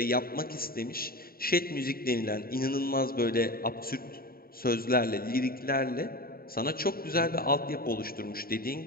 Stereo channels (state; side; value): late; right; 0.43 ms